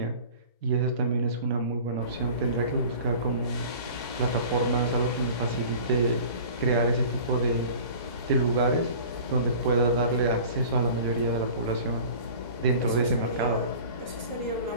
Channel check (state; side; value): inverted; both; correlation -0.42